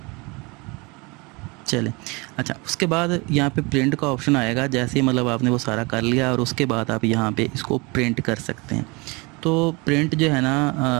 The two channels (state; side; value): quieter; left; 27.2 dB